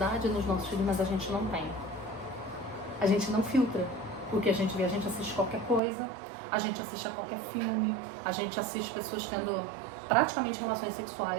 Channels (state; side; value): drops out; left; at 5.8 s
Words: nos nossos filhos, mas a gente não tem. A gente não filtra o que a gente vê. A gente assiste qualquer coisa, a gente assiste a qualquer filme, a gente assiste pessoas tendo praticamente relações